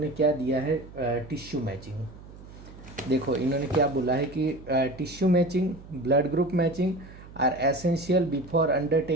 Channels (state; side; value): noise; right; hum, 18 dB below the sound